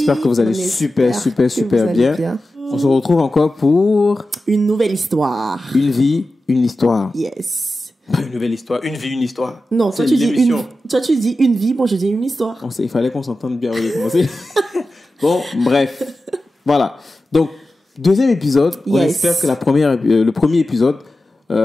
que vous allez super bien. On se retrouve encore pour une nouvelle histoire. Une vie, une histoire. Yes. Pas une nouvelle histoire, une vie, une histoire. Non, toi tu dis une vie, moi je dis une histoire. Il fallait qu'on s'entende bien au lieu de commencer. Bon, bref. Voilà. Donc, deuxième épisode. On espère que le premier épisode...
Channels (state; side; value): normal; both; correlation 0.93